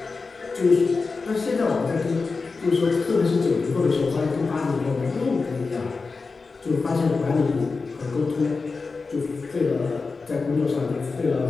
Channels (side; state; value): right; quieter; 4.3 dB